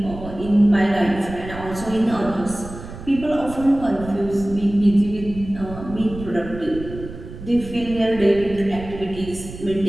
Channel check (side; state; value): right; noise; rumble, 13 dB below the sound